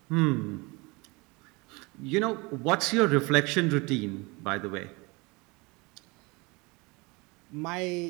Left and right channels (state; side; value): quieter; left; 26.2 dB